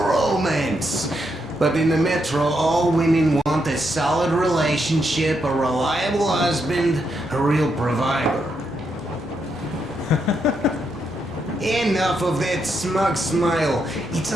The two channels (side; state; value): both; normal; correlation 0.80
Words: But in the metro, all women want a solid relationship, a reliable husband, a real provider. Enough of that smug smile. It's